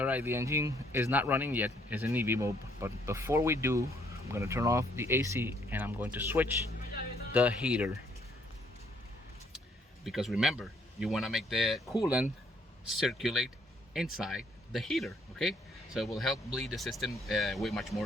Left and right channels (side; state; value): both; normal; correlation 0.67